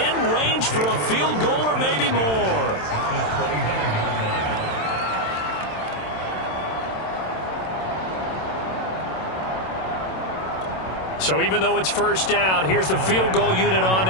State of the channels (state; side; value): late; right; 27 ms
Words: range for a field goal or maybe more. So even though it's first down, here's the field goal unit on